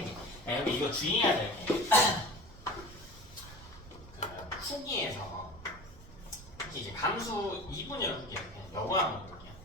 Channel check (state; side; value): noise; right; rumble, 18 dB below the sound